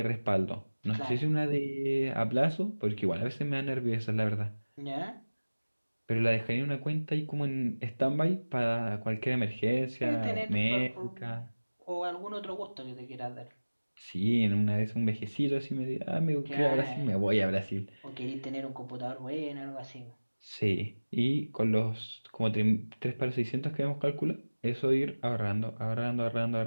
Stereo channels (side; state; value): both; inverted; correlation -1.00